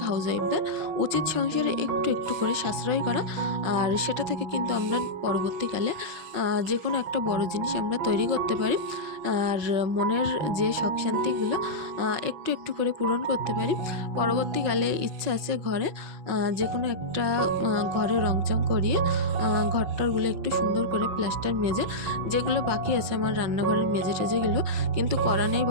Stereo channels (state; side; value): late; left; 5.9 ms